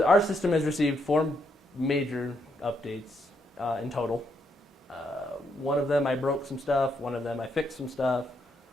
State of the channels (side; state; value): both; normal; correlation 0.77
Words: our system has received 4 major updates in total. One of them I broke some stuff, one of them I fixed some stuff.